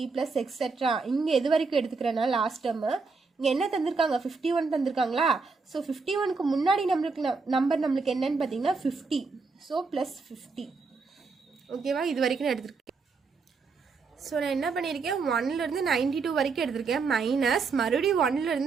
+ எக்ஸெட்ரா. இங்கே எது வரைக்கும் எடுத்துக்கிறேன்னா லாஸ்ட் டேர்மு இங்கே என்ன தந்திருக்காங்க 51 தந்திருக்காங்களா. ஸோ 51க்கு முன்னாடி நம்பர் நம்மளுக்கு என்னன்னு பார்த்தீங்கன்னா 50. ஸோ +50. ஓகேவா. இது வரைக்கும் நான் எடுத்துருக்கேன். ஸோ நான் என்ன பண்ணியிருக்கேன் 1லேருந்து 92 வரைக்கும் எடுத்திருக்கேன். மைனஸ் மறுபடியும்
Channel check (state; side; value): quieter; left; 4.6 dB